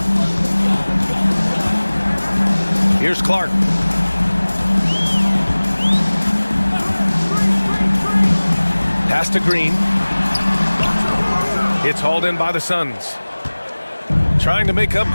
Here's Clark. Pass to Green. It's hauled in by the Suns. Trying to make up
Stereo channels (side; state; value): both; inverted; correlation -1.00